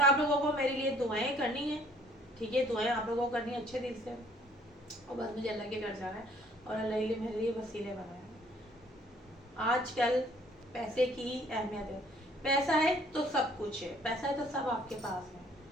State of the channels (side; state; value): both; normal; correlation 0.59